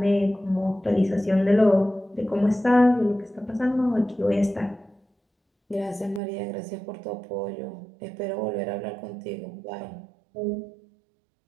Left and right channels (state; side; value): drops out; left; at 6.2 s